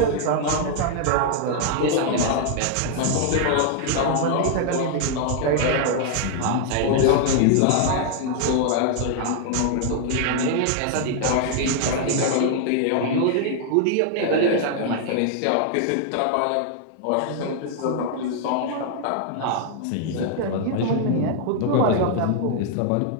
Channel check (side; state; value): both; different; correlation 0.00